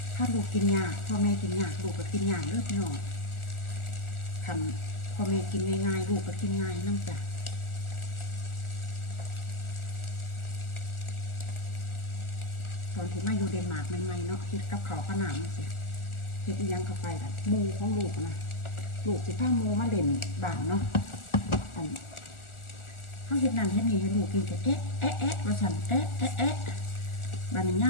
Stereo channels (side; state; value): right; late; 1.4 ms